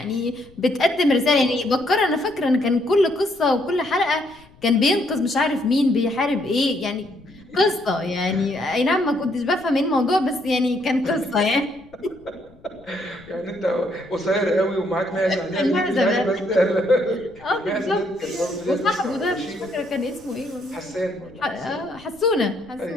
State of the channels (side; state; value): left; noise; rumble, 27 dB below the sound